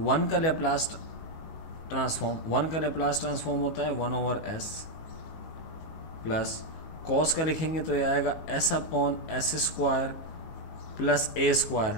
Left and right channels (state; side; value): late; right; 19 ms